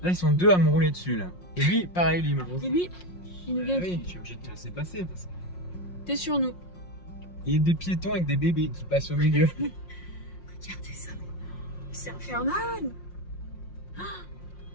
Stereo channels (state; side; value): late; right; 5.6 ms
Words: Là, ils sont deux à me rouler dessus, là. Et lui, pareil, lui, Et lui, il nous vient. oui, je suis obligé de te laisser passer. Parce que... T'es sur nous. Il y a des piétons avec des bébés qui passent au milieu. Regardez ça. C'est infernal.